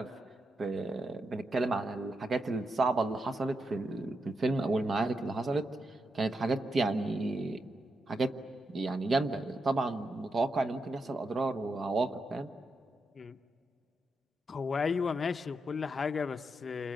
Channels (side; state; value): both; normal; correlation 0.84